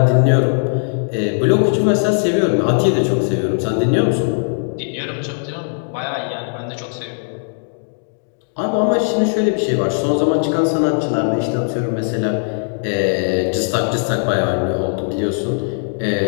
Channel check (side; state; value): right; silent; digital silence